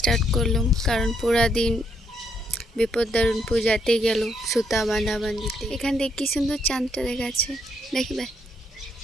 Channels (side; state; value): both; normal; correlation 0.74